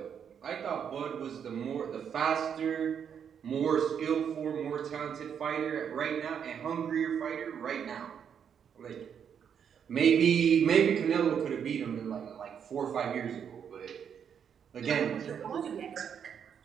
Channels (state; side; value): quieter; left; 7.8 dB